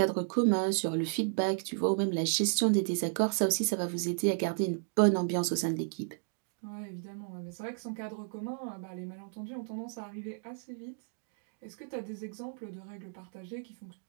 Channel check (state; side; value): silent; left; digital silence